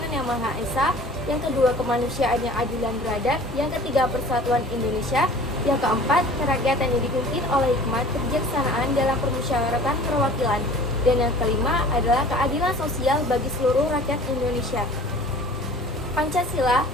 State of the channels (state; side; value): normal; both; correlation 0.46